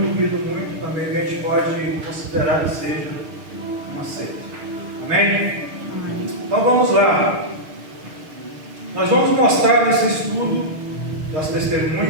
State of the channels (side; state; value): left; late; 6.6 ms